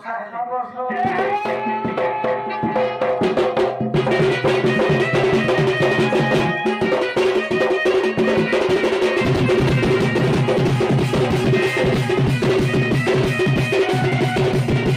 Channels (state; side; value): identical; both; correlation 1.00